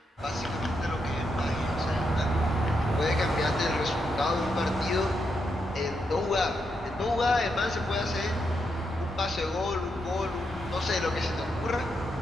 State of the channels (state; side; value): normal; both; correlation 0.82